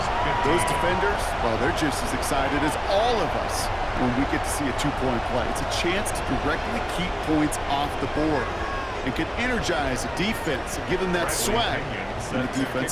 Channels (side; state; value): both; identical; correlation 1.00